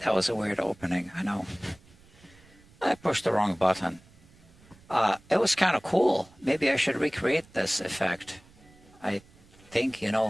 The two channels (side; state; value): right; noise; rumble, 26 dB below the sound